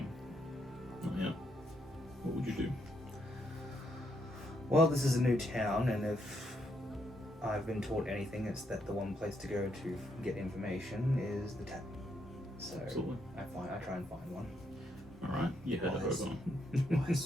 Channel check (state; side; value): normal; both; correlation 0.76